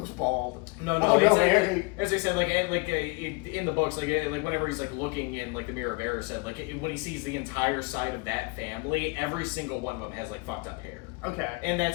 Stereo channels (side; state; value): right; quieter; 27.6 dB